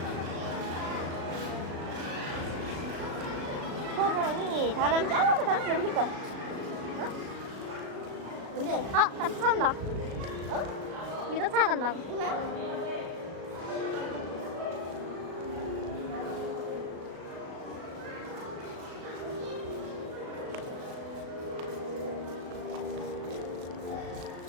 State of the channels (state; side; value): late; left; 36 ms